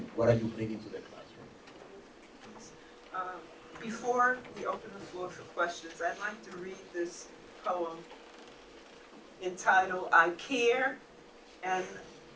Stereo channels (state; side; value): identical; both; correlation 1.00